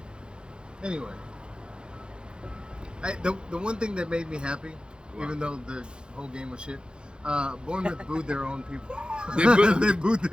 Anyway. The one thing that made me happy, even though the whole game was shit, Bournemouth booed their own people. They booed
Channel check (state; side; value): late; left; 0.050 ms